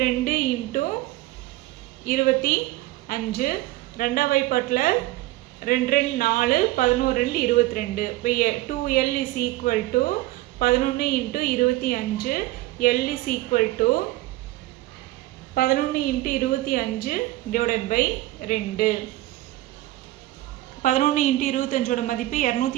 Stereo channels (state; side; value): quieter; left; 17.4 dB